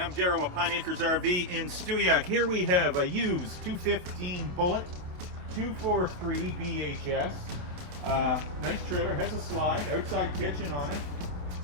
Darryl with Pine Acres RV in Stewiacke. Here we have a used 215 Bullet 243 BHS. Nice trailer, has a slide, outside kitchen on it.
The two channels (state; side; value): late; left; 28 ms